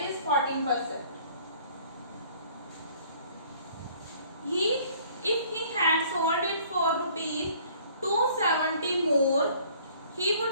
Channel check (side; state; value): both; inverted; correlation -0.56